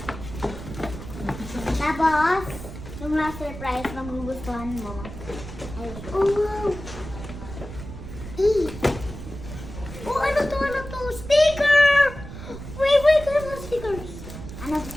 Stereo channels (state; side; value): noise; right; rumble, 11 dB below the sound